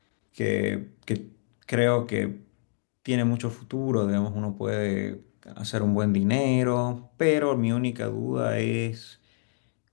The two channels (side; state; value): right; silent; digital silence